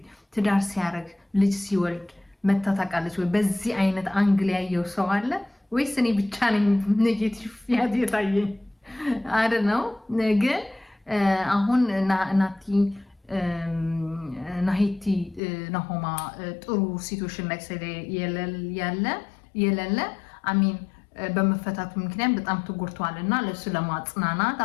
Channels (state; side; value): drops out; right; at 15.4 s